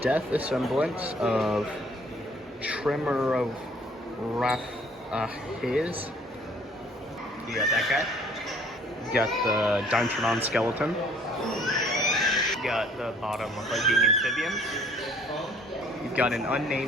Death assemblance of Tremorophis. You got that guy. You got the Dimetrodon skeleton. You got the bottom hugging amphibian. You've got an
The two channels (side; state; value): both; normal; correlation 0.57